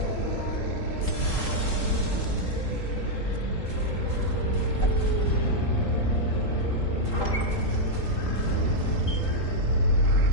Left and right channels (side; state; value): right; late; 3.8 ms